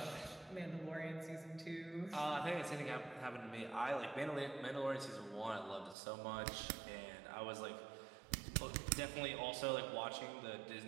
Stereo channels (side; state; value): left; drops out; at 6.0 s